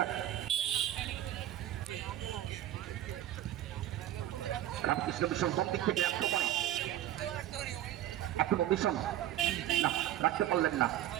রামকৃষ্ণ মিশন কোন দিক থেকে আক্রমণ। এখনো মিশন না, রাখতে পারলেন না।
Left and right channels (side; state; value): left; quieter; 12.8 dB